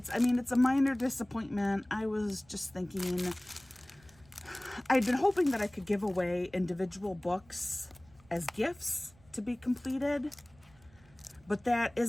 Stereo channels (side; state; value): right; noise; rumble, 28 dB below the sound